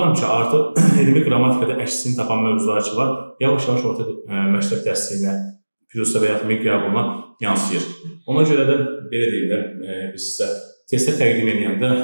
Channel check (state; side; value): inverted; both; correlation -1.00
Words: ki, artıq elmi qrammatikada əksini tapan mövzular ki var, yavaş-yavaş orta məktəb dərsliyinə, PIRUSA və ya MİQ qəbuluna yansıyır. Ona görə də belə deyim də, biz sizə testə təqdim edəndə,